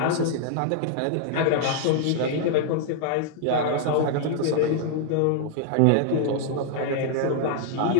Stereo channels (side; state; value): both; different; correlation 0.00